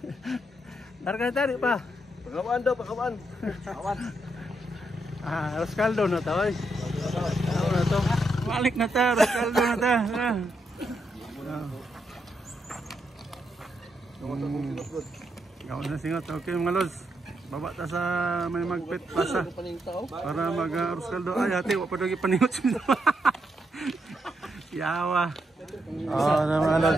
Larga na ta, di pa? Pagawaan daw, pagawaan. Awan. Rascaldo na ta, oy. Ano na to? Balik na ta, Rascaldo na ta. Gawin na singot. Okay mga los. Baba ta sa may magpit pasa. Para mag-Rascaldo. Ay, ate, wapad lagi paningot siya. Yawa. Mga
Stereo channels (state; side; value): normal; both; correlation 0.80